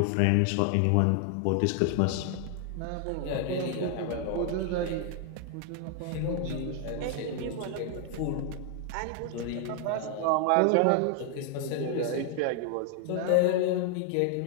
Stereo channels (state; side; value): different; both; correlation 0.00